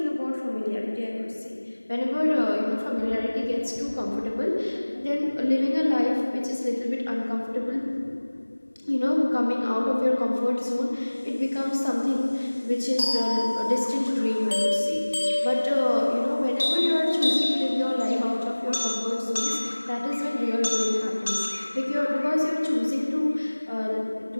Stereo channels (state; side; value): inverted; both; correlation -1.00